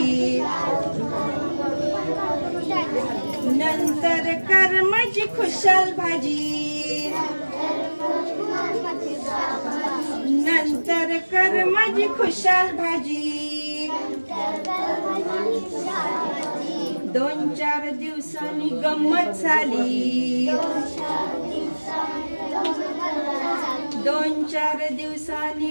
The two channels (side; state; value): both; inverted; correlation -1.00